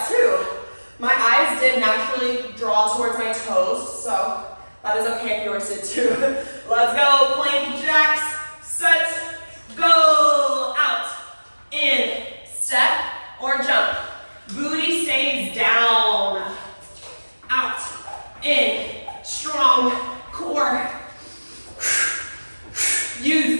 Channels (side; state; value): both; inverted; correlation -1.00